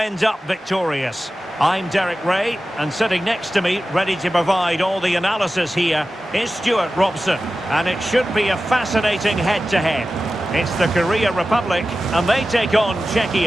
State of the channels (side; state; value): both; normal; correlation 0.94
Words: up victorious? I'm Derek Ray, and sitting next to me, ready to provide all the analysis here, is Stuart Robson. And it should be a fascinating head-to-head. It's the Korea Republic, and they take on